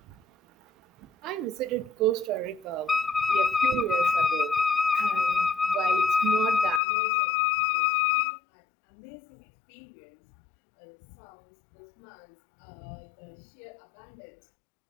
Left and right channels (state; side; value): drops out; right; at 6.8 s